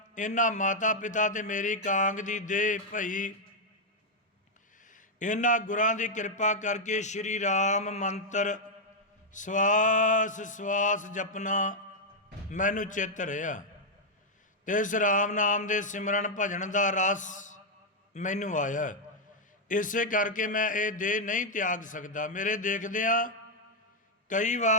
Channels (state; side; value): normal; both; correlation -0.01